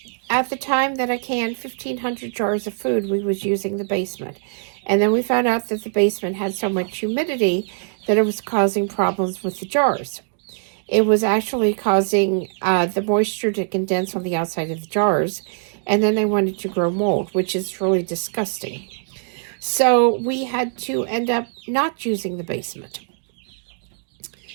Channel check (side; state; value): left; silent; digital silence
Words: the time that I canned 1,500 jars of food, we was using the basement. And then we found out that the basement had so much humidity that it was causing problems with the jars. It was actually causing the moisture to condense on the outside of the jars, and then they wanted to grow mold, which is really disgusting. So we had to end up not using the basement.